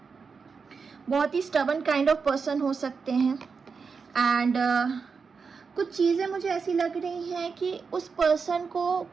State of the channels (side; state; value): left; quieter; 5.3 dB